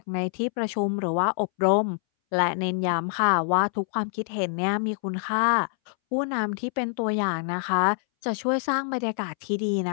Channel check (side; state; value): right; silent; 61 dB below the other